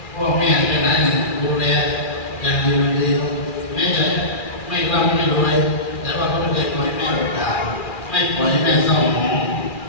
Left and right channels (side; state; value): right; late; 2.4 ms